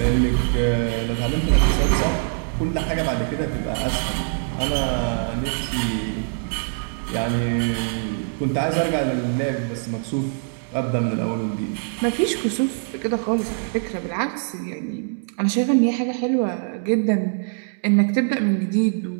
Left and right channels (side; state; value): left; silent; 63 dB below the other